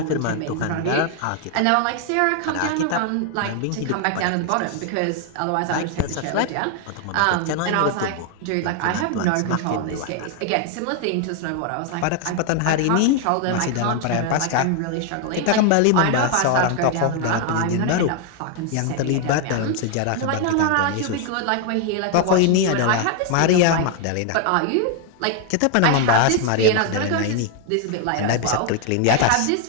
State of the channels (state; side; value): different; both; correlation 0.00